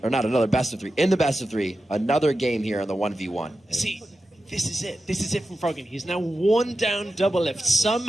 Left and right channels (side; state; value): both; normal; correlation 0.91